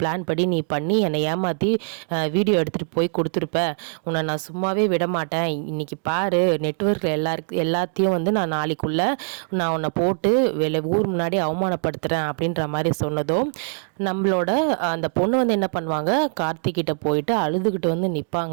படி நீ பண்ணி என்னை ஏமாற்றி வீடியோ எடுத்துகிட்டு போய் கொடுத்துருப்ப. உன்னை நான் சும்மாவே விட மாட்டேன். இன்றைக்கி பாரு, நெட்வொர்க்கில் எல்லாத்தையும் நான் நாளைக்குள்ளே நான் உன்னை போட்டு ஊர் முன்னாடி அவமானப்படுத்துகிறேன் அப்படின்ற மாதிரி சொன்னதும் நம்மளோட அந்த பொண்ணு என்ன பண்ணுவாங்க, கார்த்திகிட்ட போயிட்டு அழுதுகிட்டு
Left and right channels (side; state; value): left; silent; 64 dB below the other